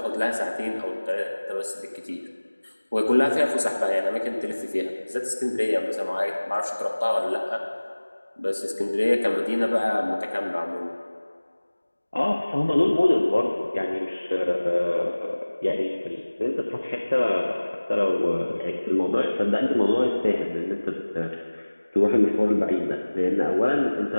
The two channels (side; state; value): both; inverted; correlation -1.00